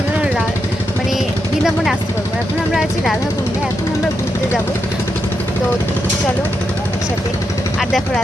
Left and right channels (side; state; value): both; normal; correlation 0.84